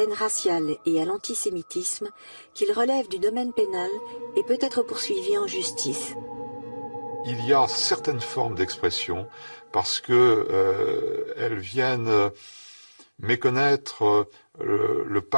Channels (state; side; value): inverted; both; correlation -1.00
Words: haine raciale et à l'antisémitisme qu'il relève du domaine pénal et peut être poursuivi en justice. Il y a certaines formes d'expression parce que elles viennent méconnaître le